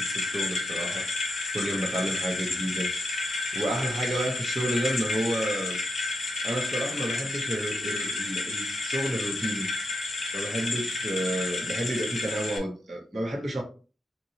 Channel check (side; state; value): both; normal; correlation 0.85